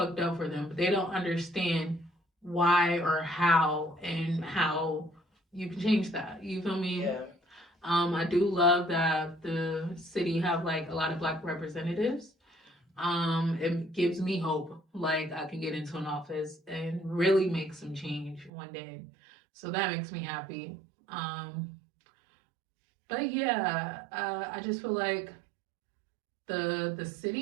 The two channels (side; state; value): left; drops out; at 18.5 s